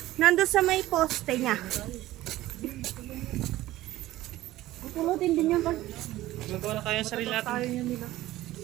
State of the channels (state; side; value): quieter; left; 15.9 dB